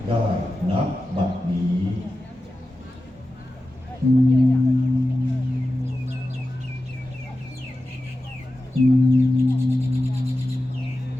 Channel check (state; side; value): normal; both; correlation 0.93